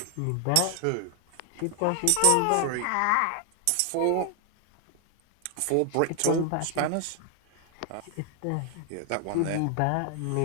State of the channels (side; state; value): both; different; correlation 0.00